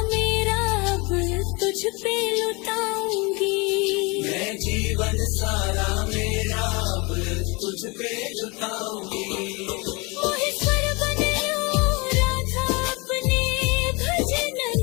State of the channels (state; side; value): quieter; right; 27.7 dB